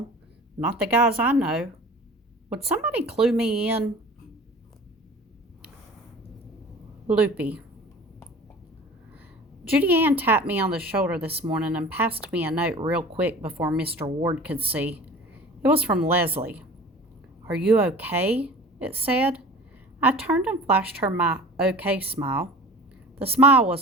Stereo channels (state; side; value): normal; both; correlation 0.42